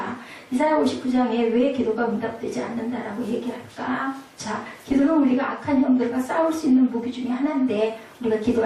이사야 59장에 왜 기도가 응답되지 않는다라고 얘기할까? 자, 기도는 우리가 악한 형들과 싸울 수 있는 무기 중에 하나인데 우리가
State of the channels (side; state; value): both; identical; correlation 1.00